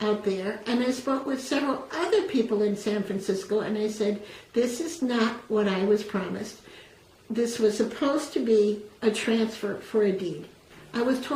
out there, and I spoke with several other people in San Francisco, and I said, this is not what I was promised. This was supposed to be a transfer for a deed. I was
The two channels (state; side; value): identical; both; correlation 1.00